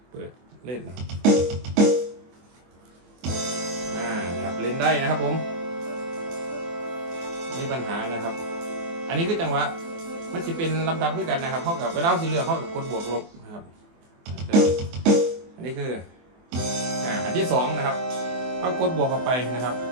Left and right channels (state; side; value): late; left; 24 ms